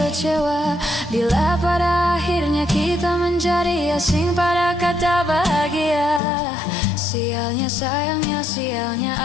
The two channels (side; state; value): right; drops out; at 6.2 s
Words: Bila pada akhirnya kita menjadi asing pada kata bahagia, sialnya sayangnya sialnya